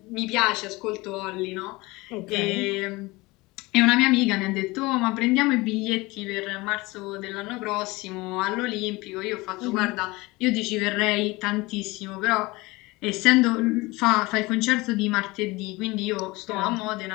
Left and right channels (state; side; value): quieter; right; 22.4 dB